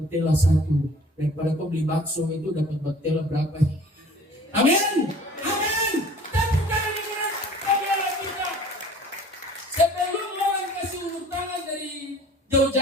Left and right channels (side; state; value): both; normal; correlation 0.48